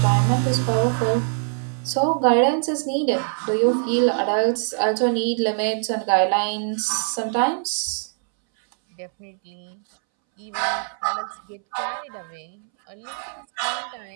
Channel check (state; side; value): silent; left; 63 dB below the other